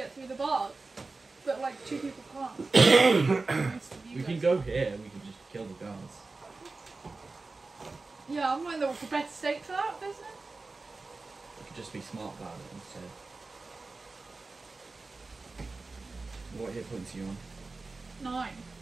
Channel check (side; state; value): left; quieter; 3.7 dB